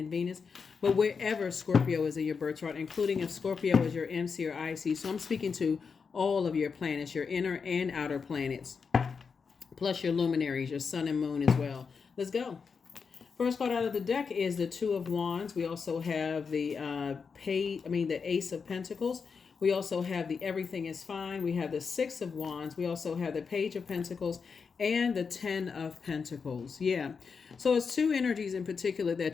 Venus, but wherever Scorpio is in your birth chart, including if Scorpio is your MC or IC. So I'm speaking to all of your planets, your inner and outer planets, plus your luminaries, your sun and moon as well. Let's go. First card out of the deck is the Two of Wands. We also have the the Ace of Pentacles. We also have the Everything is Fine. We have the Six of Wands. We also have the Page of Pentacles and the Ten of Pentacles. Yeah. So it's two energies in particular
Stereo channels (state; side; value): quieter; right; 5.6 dB